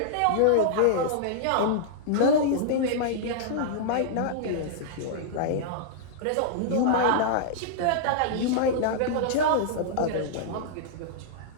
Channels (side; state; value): both; different; correlation -0.02